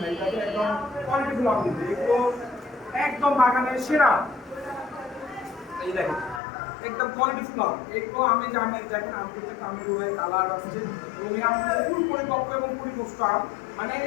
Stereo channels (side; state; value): right; drops out; at 6.4 s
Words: না, এটা একদম কোয়ালিটিফুল আম কিন্তু এগুলো একদম বাগানের সেরা। এই দেখেন একদম কোয়ালিটিফুল আম, এগুলো আমি যে আমের দেখেন আম করতে আমের রোয়াই কালার আসছে এবং এই আম খুব পরিপক্ক এবং পরিপুষ্ট আম। মানে